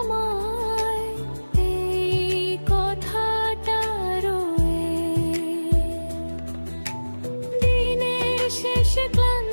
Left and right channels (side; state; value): both; inverted; correlation -1.00